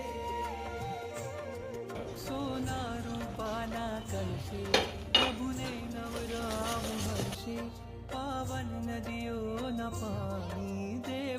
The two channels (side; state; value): both; identical; correlation 1.00